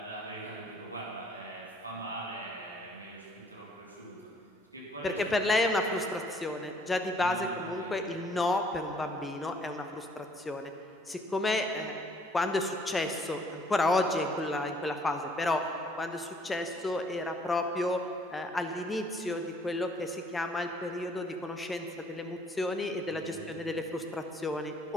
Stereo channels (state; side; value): normal; both; correlation 0.61